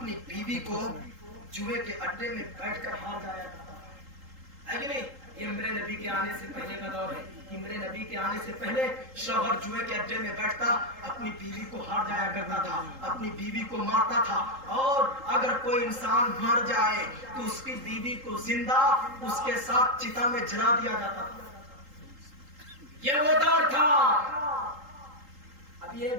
بیوی کو جوئے کے اڈے میں بیٹھ کر ہار جایا کرتا ہے کہ نہیں؟ یہ میرے نبی کے آنے سے پہلے کا دور ہے کہ میرے نبی کے آنے سے پہلے شوہر جوئے کے اڈے میں بیٹھتا، اپنی بیوی کو ہار جایا کرتا تھا، اپنی بیوی کو مارتا تھا، اور اگر کوئی انسان مر جائے تو اس کی بیوی کو زندہ اس کے ساتھ چتا میں جلا دیا جاتا تھا۔ یہ وہ دور تھا۔ اب یہ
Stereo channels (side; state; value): left; late; 3.8 ms